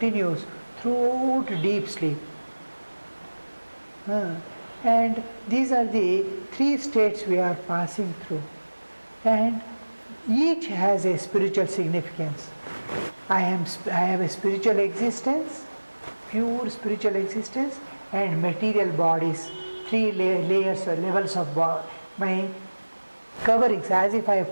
throughout deep sleep. And these are the three states we are passing through, and each has a spiritual significance. I have a spiritual existence, pure spiritual existence, and material bodies, three layers or levels of my coverings, as if I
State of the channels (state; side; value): inverted; both; correlation -1.00